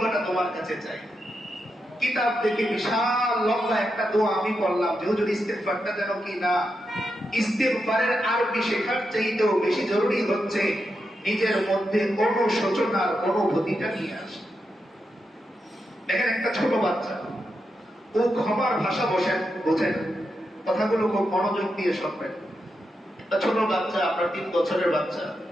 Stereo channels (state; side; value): normal; both; correlation 0.86